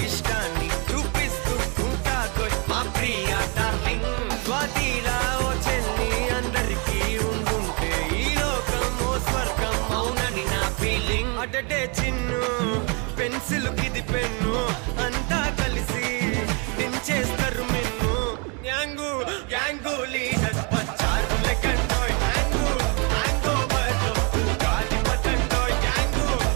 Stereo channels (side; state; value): left; quieter; 33.8 dB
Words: ఇష్టాన్ని చూపిస్తూ ఉంటాదో మా ప్రియ డార్లింగ్ స్వాతిలా ఓ చెల్లి అందరికీ ఉండుంటే ఈ లోకం ఓ స్వర్గం అవునని నా ఫీలింగ్ అటటే చిన్ను పెన్సిల్ కిది పెన్ను అంతా కలిసి దించేస్తారు మెన్ను గ్యాంగు గ్యాంగు లీడర్ పంచారు లెక్కండోయ్ హ్యాంగు హ్యాంగ్ ఓవర్లో గాలి పట్టండోయ్ గ్యాంగు